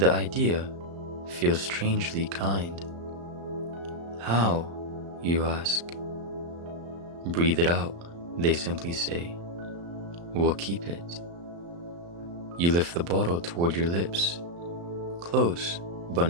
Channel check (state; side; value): late; left; 35 ms